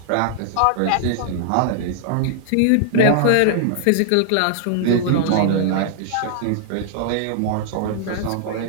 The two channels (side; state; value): both; different; correlation -0.01